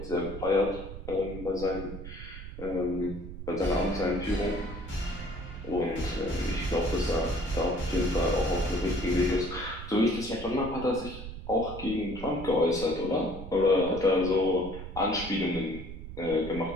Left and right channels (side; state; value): right; noise; rumble, 11 dB below the sound